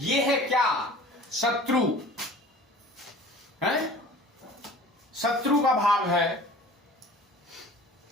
है क्या? शत्रु है, शत्रु का भाव है।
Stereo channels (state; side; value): normal; both; correlation 0.44